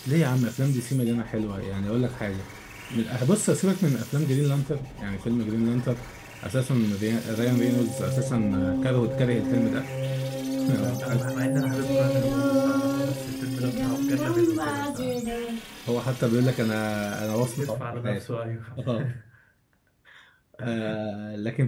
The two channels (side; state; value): both; identical; correlation 1.00